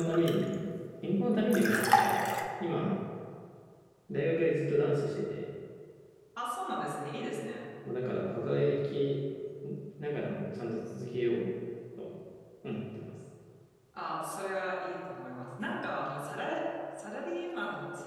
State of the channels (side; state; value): both; identical; correlation 1.00